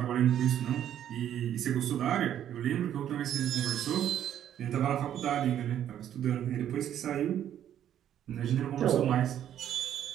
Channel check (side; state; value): left; quieter; 10.5 dB